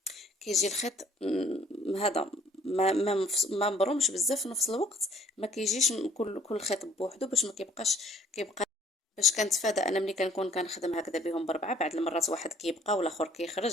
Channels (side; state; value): both; normal; correlation 0.59